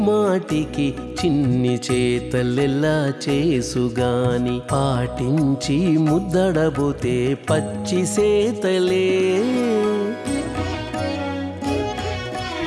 మాటికి చిన్ని చేతలెల్లా చేసుగాని పాటించి ముద్దడబోతే పచ్చి సేతలే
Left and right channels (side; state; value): both; identical; correlation 1.00